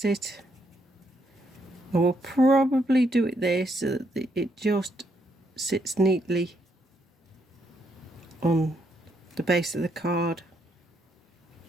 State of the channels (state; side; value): normal; both; correlation 0.75